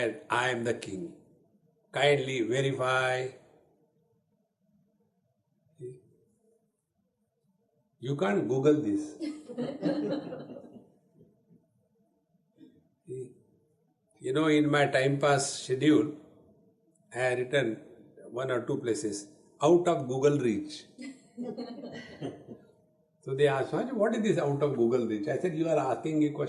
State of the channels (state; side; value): identical; both; correlation 1.00